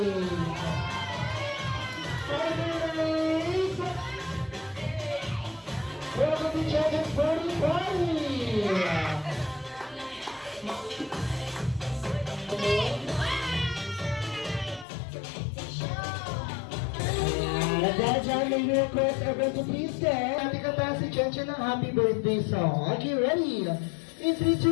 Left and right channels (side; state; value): right; drops out; at 14.9 s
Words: Welcome to Champions Party Party! At that time, may request everyone to please stand. Happy kanta si Chen Chen ng happy birthday song. Are you ready? In 3,